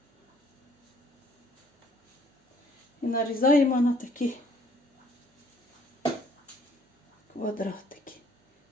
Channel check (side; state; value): both; normal; correlation 0.61